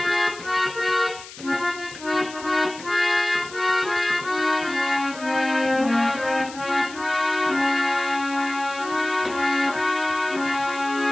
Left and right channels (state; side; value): noise; left; hiss, 16 dB below the sound